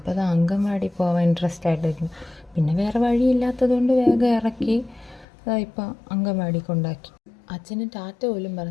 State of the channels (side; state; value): right; drops out; at 5.2 s